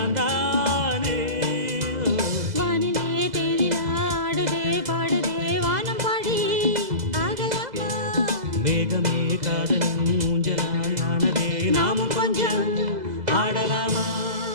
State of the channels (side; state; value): left; late; 2.0 ms